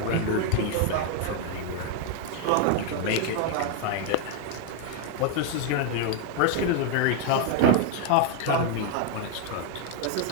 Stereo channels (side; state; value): both; different; correlation 0.01